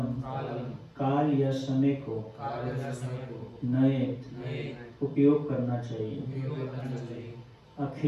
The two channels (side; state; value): both; identical; correlation 1.00